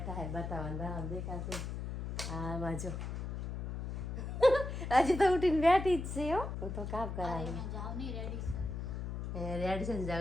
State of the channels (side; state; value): left; noise; hum, 4 dB below the sound